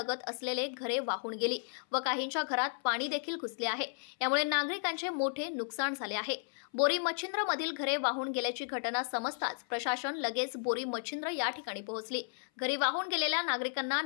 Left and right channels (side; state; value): right; silent; 55 dB below the other